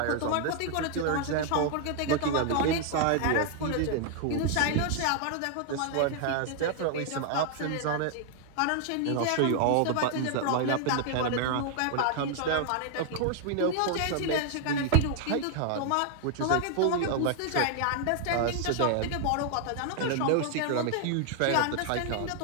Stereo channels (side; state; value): both; different; correlation 0.00